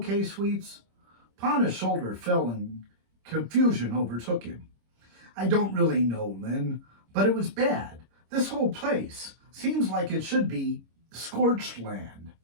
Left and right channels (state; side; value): late; left; 26 ms